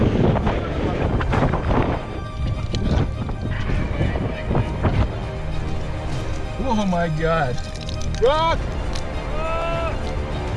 Oh my God! Rock!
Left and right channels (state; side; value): identical; both; correlation 1.00